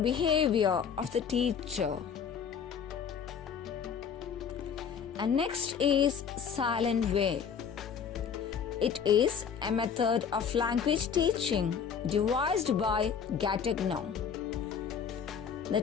behavior of the teacher. And next is silent way. It is a method of language teaching devised by Gattegno. The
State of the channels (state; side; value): quieter; right; 7.1 dB